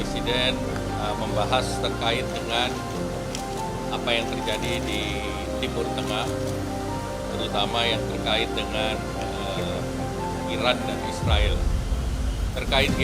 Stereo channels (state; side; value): identical; both; correlation 1.00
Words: membahas terkait dengan apa yang terjadi di Timur Tengah, terutama yang terkait dengan Iran dan Israel. Terkait